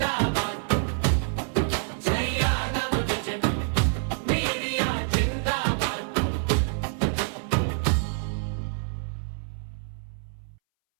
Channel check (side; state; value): left; silent; 60 dB below the other